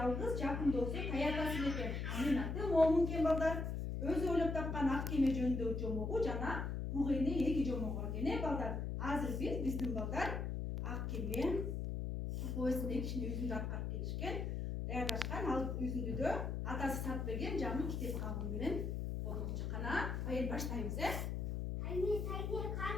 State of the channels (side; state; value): left; noise; hum, 2 dB below the sound